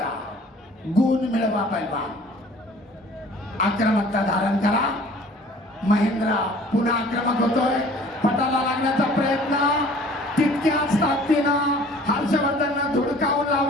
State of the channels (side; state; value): both; normal; correlation 0.50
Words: गुण मिळवा पैलवान. आक्रमकता धारण करा. महेंद्र पुन्हा आक्रमक होतोय. पटाला लागण्याचा प्रयत्न तितक्याच ताकदीनं हर्षवर्धननं धुडकावून